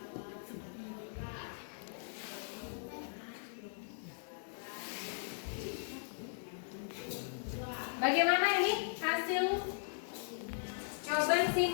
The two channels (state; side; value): silent; right; digital silence